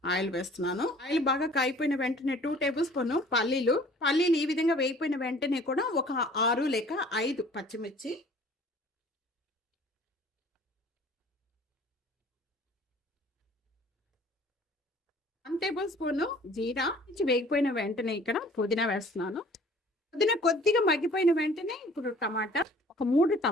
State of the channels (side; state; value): both; normal; correlation 0.51